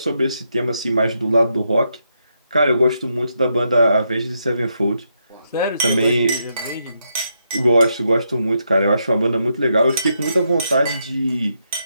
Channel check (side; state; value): both; inverted; correlation -0.80